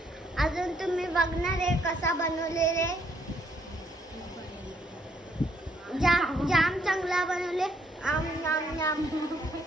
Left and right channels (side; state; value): both; normal; correlation 0.70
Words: अजून तुम्ही बघणार आहे कसा बनवलेले. जाम चांगला बनवले. आम नाम नाम.